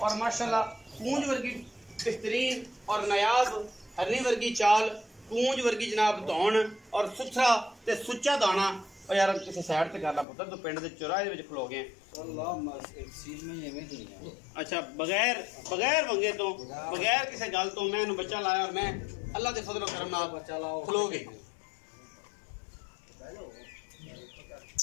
और माशाल्लाह पूंज वर्गी बेहतरीन और नायाब हरनी वर्गी चाल, पूंज वर्गी जनाब धौन और सुथरा ते सुच्चा दाना। और यार किसी साइड ते कर ला पुत्तर, तो पिंड दे चौराहे दे विच खलो गए। अच्छा बगैर बगैर वंगे तो बगैर किसी गल तो मैं बच्चा लाया और मैं अल्लाह दे फजलो करम नाल खलो गए।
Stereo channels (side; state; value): right; drops out; at 10.2 s